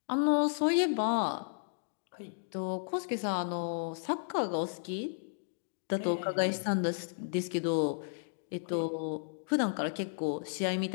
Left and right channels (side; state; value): right; silent; digital silence